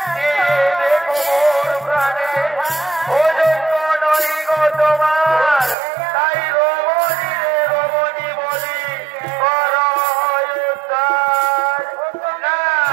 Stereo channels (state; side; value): drops out; left; at 5.8 s